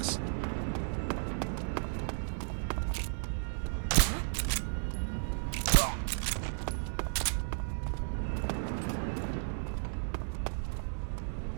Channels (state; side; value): silent; left; digital silence